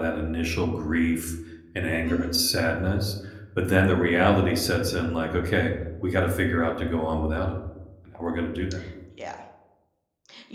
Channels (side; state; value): both; identical; correlation 1.00